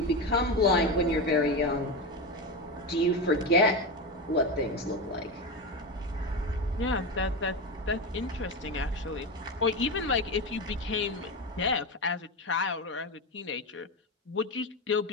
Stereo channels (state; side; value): normal; both; correlation 0.18